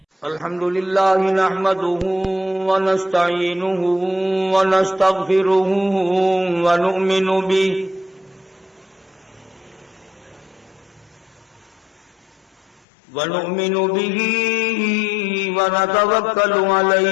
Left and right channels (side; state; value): right; drops out; at 12.8 s